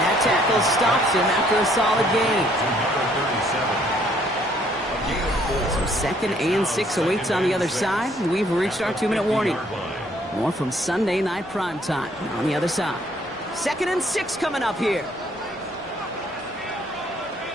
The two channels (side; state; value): both; normal; correlation 0.64